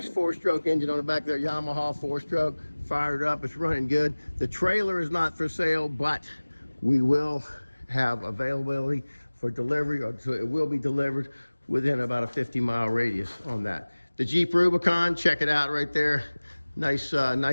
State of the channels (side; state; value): both; inverted; correlation -1.00